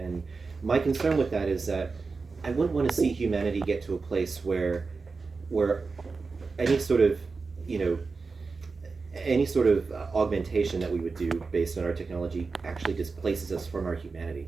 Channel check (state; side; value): quieter; left; 4.4 dB